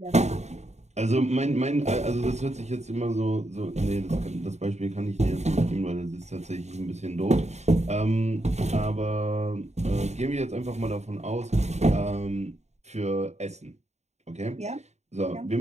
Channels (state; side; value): late; left; 0.32 ms